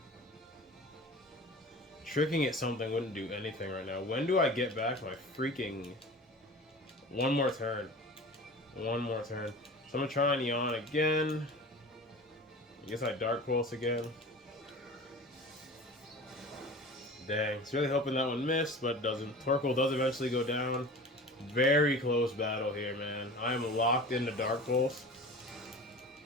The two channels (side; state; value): both; normal; correlation 0.38